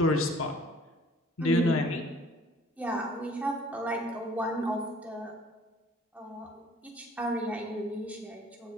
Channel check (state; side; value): normal; both; correlation 0.54